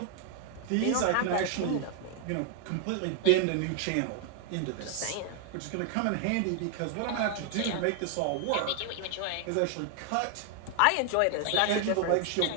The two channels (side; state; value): both; different; correlation 0.00